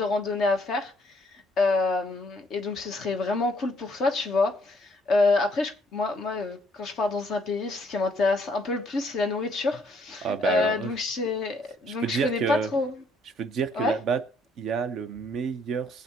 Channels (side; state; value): both; normal; correlation 0.67